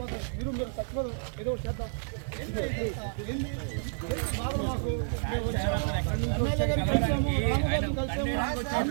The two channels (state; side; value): silent; left; digital silence